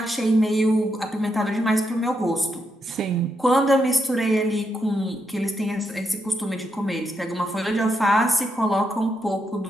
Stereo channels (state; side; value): normal; both; correlation 0.81